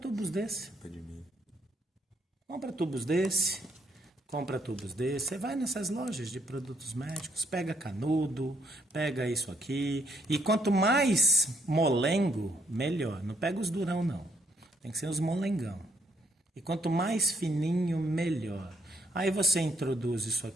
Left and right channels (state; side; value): normal; both; correlation 0.71